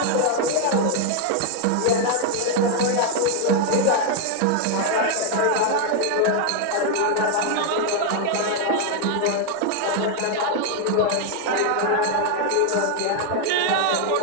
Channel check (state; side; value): different; both; correlation 0.00